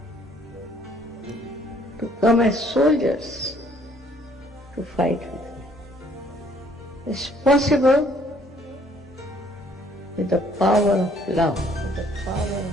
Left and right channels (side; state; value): both; normal; correlation 0.62